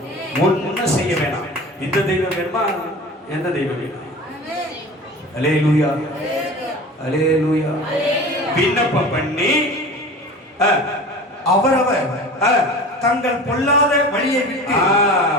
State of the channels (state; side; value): normal; both; correlation 0.36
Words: ஒன்னும் செய்ய வேணாம். இந்த தெய்வம் வேணுமா? எந்த தெய்வம் வேணும்? அல்லேலூயா, அல்லேலூயா. விண்ணப்பம் பண்ணி அவரவர் தங்கள் பொல்லாத வழியை விட்டு,